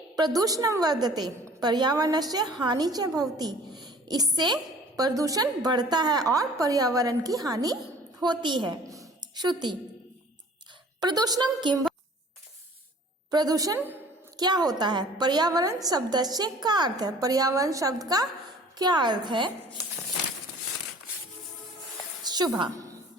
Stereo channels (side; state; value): both; normal; correlation 0.49